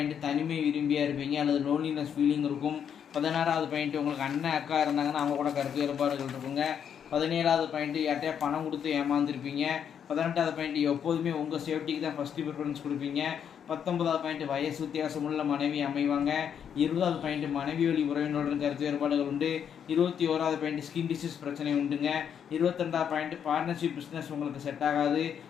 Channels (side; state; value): right; quieter; 8.2 dB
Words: தனிமை விரும்பியாக இருப்பீங்க அல்லது லோன்லினஸ் ஃபீலிங் இருக்கும். 16வது பாயிண்ட்டு உங்களுக்கு அண்ணன் அக்கா இருந்தாங்கன்னா அவங்க கூட கருத்து வேறுபாடுகள் இருக்குங்க. 17வது பாயிண்ட்டு யார்கிட்டயா பணம் கொடுத்து ஏமாந்துருப்பீங்க. 18வது பாயிண்ட்டு எப்போதுமே உங்கள் சேஃப்டிக்கு தான் ஃபஸ்ட்டு ப்ரிஃபரன்ஸ் கொடுப்பீங்க. 19வது பாயிண்ட்டு வயசு வித்தியாசமுள்ள மனைவி அமைவாங்க. 20வது பாயிண்ட்டு மனைவி வழி உறவினருடன் கருத்து வேறுபாடுகள் உண்டு. 21வது பாயிண்ட்டு ஸ்கின் டிசீஸ் பிரச்சனை உண்டுங்க. 22வது பாயிண்ட்டு பார்ட்னர்ஷிப் பிஸ்னஸ் உங்களுக்கு செட் ஆகாது.